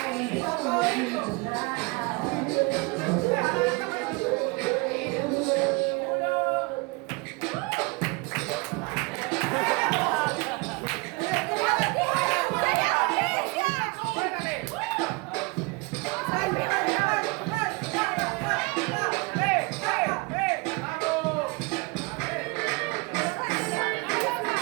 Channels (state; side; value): quieter; left; 27.3 dB